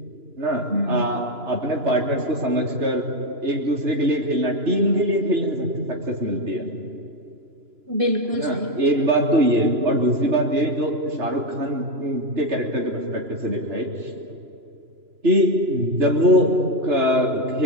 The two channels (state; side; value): late; left; 2.9 ms